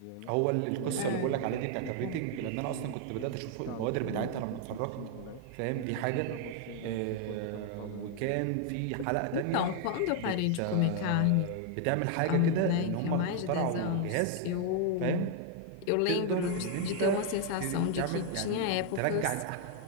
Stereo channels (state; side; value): different; both; correlation 0.00